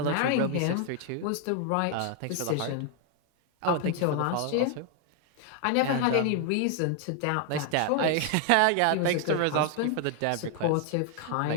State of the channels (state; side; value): different; both; correlation 0.00